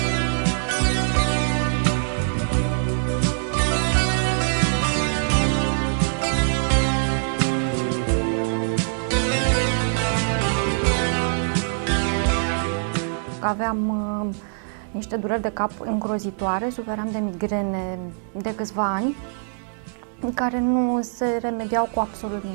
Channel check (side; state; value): left; silent; digital silence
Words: Aveam niște dureri de cap îngrozitoare, suferam de migrene de câțiva ani, care nu se remediau cu absolut